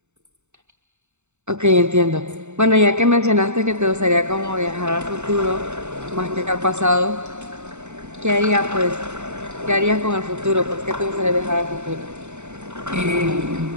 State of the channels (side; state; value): left; late; 0.83 ms